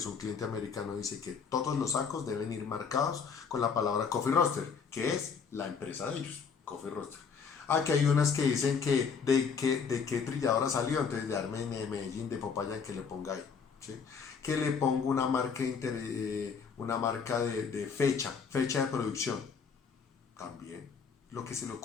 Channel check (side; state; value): right; quieter; 6.0 dB